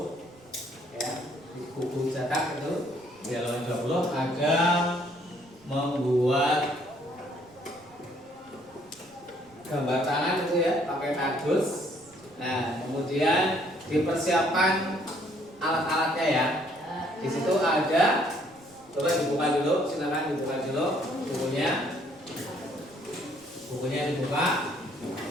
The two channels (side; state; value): right; noise; rumble, 30 dB below the sound